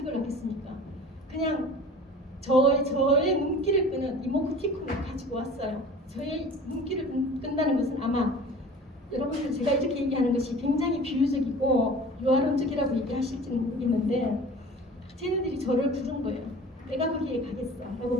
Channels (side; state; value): both; normal; correlation 0.42